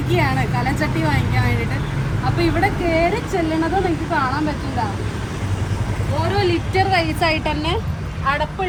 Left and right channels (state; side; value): identical; both; correlation 1.00